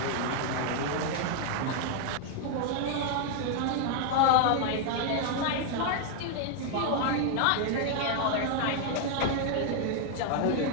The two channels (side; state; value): both; different; correlation 0.00